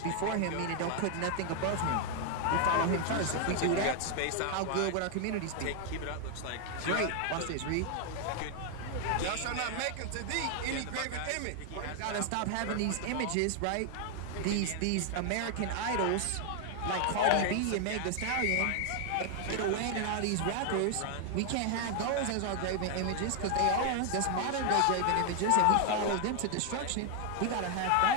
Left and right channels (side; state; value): both; different; correlation 0.00